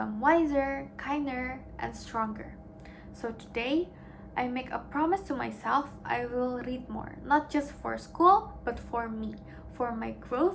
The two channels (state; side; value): identical; both; correlation 1.00